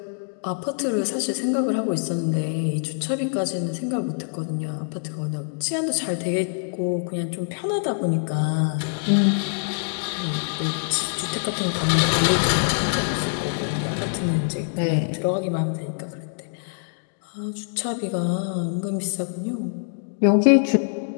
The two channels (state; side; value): silent; right; digital silence